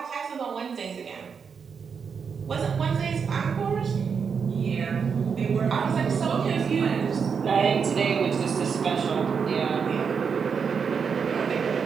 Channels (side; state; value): left; quieter; 6.2 dB